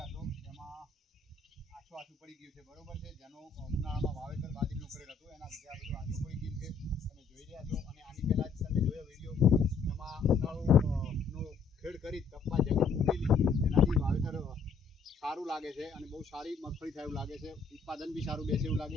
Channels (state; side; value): quieter; right; 5.0 dB